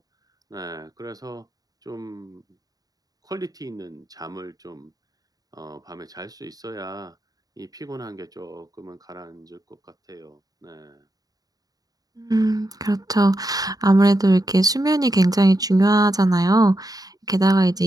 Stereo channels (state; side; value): late; left; 0.18 ms